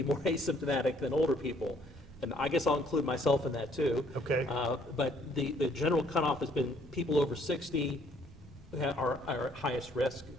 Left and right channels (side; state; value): both; normal; correlation 0.63